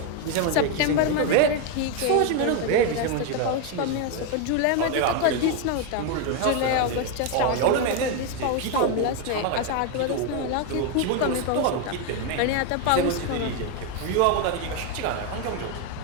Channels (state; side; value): different; both; correlation 0.01